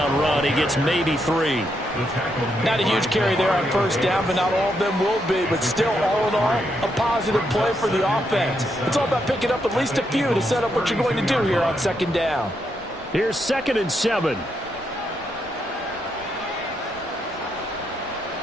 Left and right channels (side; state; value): both; normal; correlation 0.79